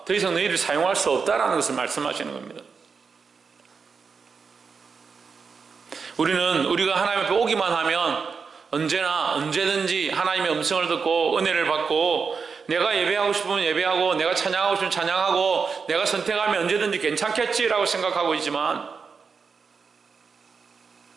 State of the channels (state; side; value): quieter; left; 5.4 dB